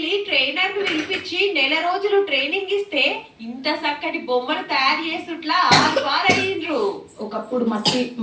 ట్రైనర్ ను పిలిపించి నెల రోజులు ట్రైనింగ్ ఇస్తే ఇంత చక్కటి బొమ్మలు తయారు చేసుట్లా అయ్యిండ్రు. ఒకప్పుడు మట్టి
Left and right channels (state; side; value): identical; both; correlation 1.00